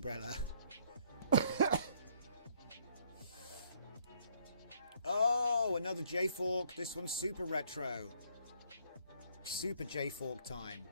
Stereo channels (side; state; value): both; inverted; correlation -0.66